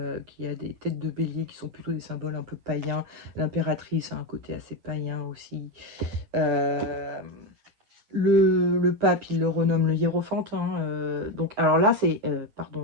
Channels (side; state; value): left; late; 9.8 ms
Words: qui a des têtes de bélier qui sont plutôt des symboles un peu païens. L'impératrice a un côté assez païen aussi. Le pape, il le renomme le hiérophante. Hein, donc, alors là, c'est...